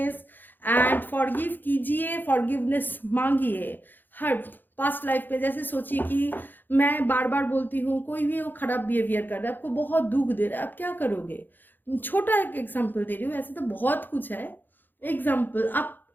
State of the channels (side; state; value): right; late; 0.090 ms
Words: एंड फॉरगिव कीजिए, फॉरगिवनेस मांगिए। हर पास्ट लाइफ में जैसे सोचिए कि मैं बार बार बोलती हूँ, कोई भी वो खराब बिहेवियर कर रहा है, आपको बहुत दुख दे रहा है, आप क्या करोगे। छोटा एक एग्जाम्पल दे रही हूँ, ऐसे तो बहुत कुछ है। एग्जाम्पल, आप